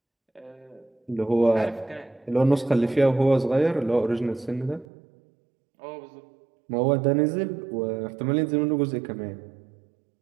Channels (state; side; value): drops out; left; at 4.9 s